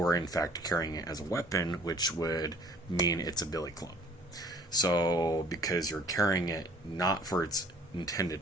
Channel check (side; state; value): both; normal; correlation 0.54